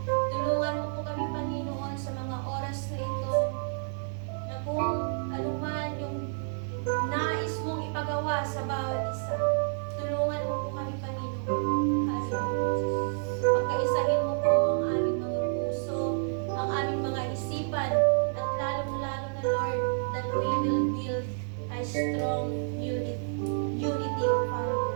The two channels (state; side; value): silent; left; 58 dB below the other